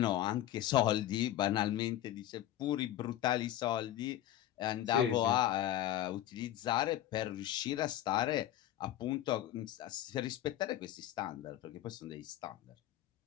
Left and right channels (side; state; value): right; quieter; 12.6 dB